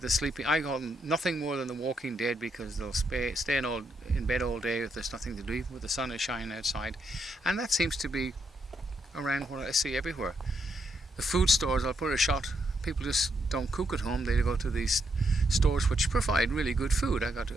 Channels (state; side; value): normal; both; correlation 0.78